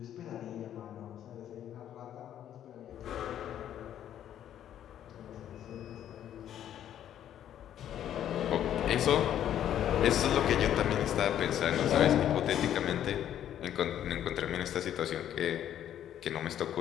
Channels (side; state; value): right; quieter; 10.7 dB